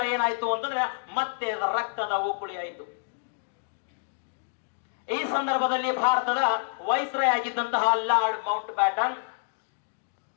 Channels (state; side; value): silent; right; digital silence